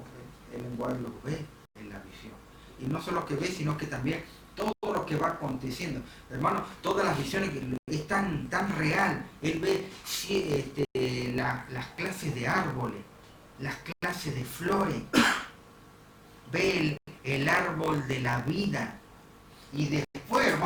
el lenguaje lo ve en la visión. Y no solo que ve, sino que también todo lo que va aconteciendo. Hermano, todas las visiones es tan real. Él ve las clases de árboles, las clases de flores, ve el árbol de la vida. Y después,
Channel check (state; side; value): identical; both; correlation 1.00